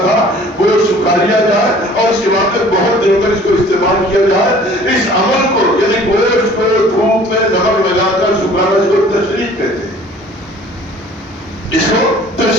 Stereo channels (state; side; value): normal; both; correlation 0.50